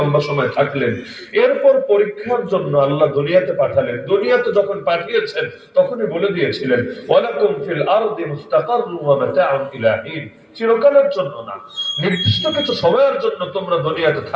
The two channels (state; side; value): identical; both; correlation 1.00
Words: সময় থাকলেন। এরপর পরীক্ষার জন্য আল্লাহ দুনিয়াতে পাঠালেন। দুনিয়াতে যখন পাঠিয়েছেন তখনই বলে দিয়েছিলেন, ওয়ালাকুম ফিল আরদি মুস্তাকাররুন ওয়া মাতাউন ইলা হিন। চিরকালের জন্য না, নির্দিষ্ট কিছু সময়ের জন্য তোমরা দুনিয়াতে